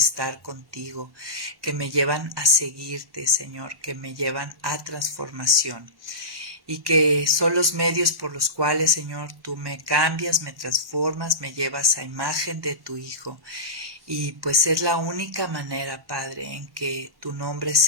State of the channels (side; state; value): left; late; 1.1 ms